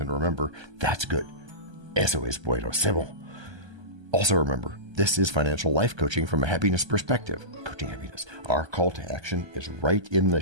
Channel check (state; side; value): late; left; 1.3 ms